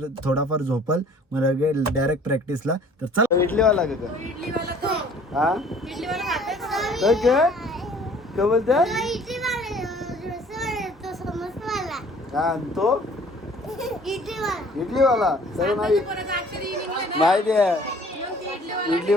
थोडाफार झोपल मग डायरेक्ट प्रॅक्टिसला तर चल इडलीवाला का हा काय बोलते हा तो इडलीवाला सर माहिती आहे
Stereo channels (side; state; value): both; normal; correlation 0.53